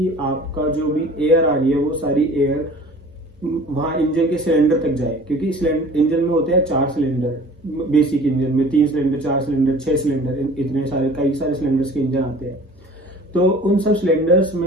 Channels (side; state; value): both; normal; correlation 0.45